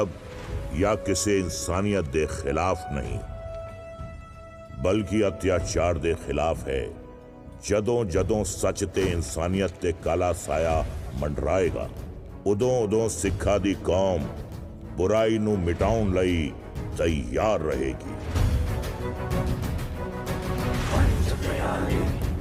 या किसे इंसानियत दे खिलाफ नहीं, बल्कि अत्याचार दे खिलाफ है। ਜਦੋਂ ਜਦੋਂ ਸੱਚ ਤੇ ਇਨਸਾਨੀਅਤ ਤੇ ਕਾਲਾ ਸਾਇਆ ਮੰਡਰਾਏਗਾ, ਉਦੋਂ ਉਦੋਂ ਸਿੱਖਾਂ ਦੀ ਕੌਮ ਬੁਰਾਈ ਨੂੰ ਮਿਟਾਉਣ ਲਈ ਤਿਆਰ ਰਹੇਗੀ। पंच प्यारे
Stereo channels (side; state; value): both; identical; correlation 1.00